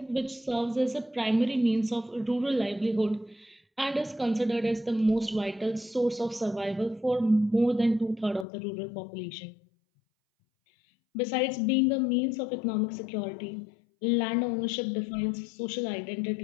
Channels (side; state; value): right; drops out; at 8.5 s